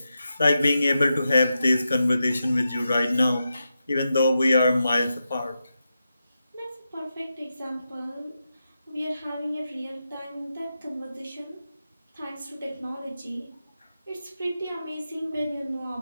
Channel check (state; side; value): inverted; both; correlation -0.88